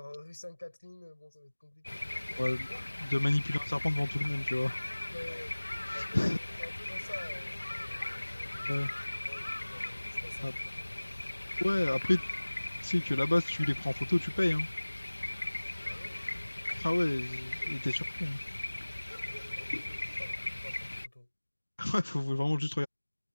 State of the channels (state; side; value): inverted; both; correlation -1.00